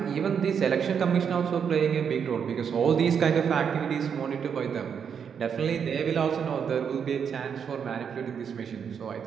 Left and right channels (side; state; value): left; quieter; 7.2 dB